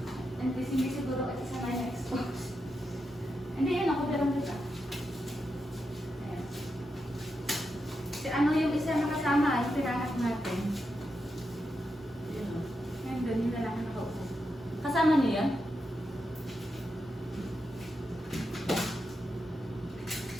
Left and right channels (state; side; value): normal; both; correlation 0.86